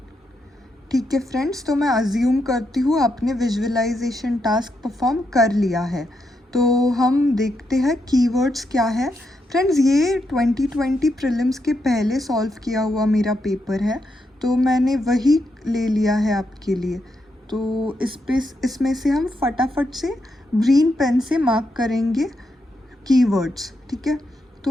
ठीक है फ्रेंड्स। तो मैं अज्यूम करती हूँ आपने विजुअलाइजेशन टास्क परफॉर्म कर लिया है। तो हम देखते हैं कीवर्ड्स क्या है। फ्रेंड्स, ये 2020 प्रीलिम्स के पहले सॉल्व किया हुआ मेरा पेपर है, तो मैंने वही ले लिया है आपके लिए। तो इसमें से हम फटाफट से ग्रीन पेन से मार्क करेंगे कीवर्ड्स, ठीक है।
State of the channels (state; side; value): normal; both; correlation 0.82